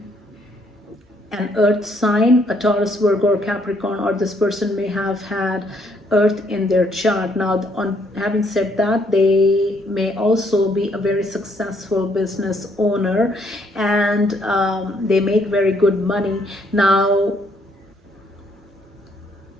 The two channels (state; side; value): normal; both; correlation 0.69